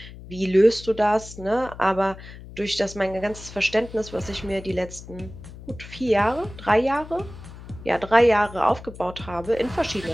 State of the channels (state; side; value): noise; left; hum, 15 dB below the sound